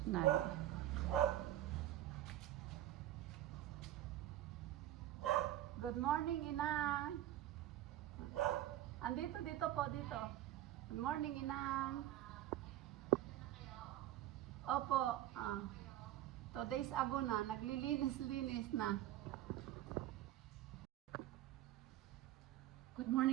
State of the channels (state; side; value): quieter; left; 13.4 dB